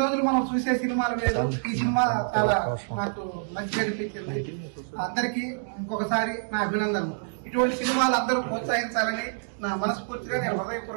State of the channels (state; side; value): silent; left; digital silence